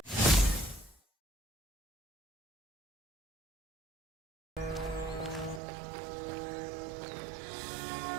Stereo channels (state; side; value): drops out; left; at 5.6 s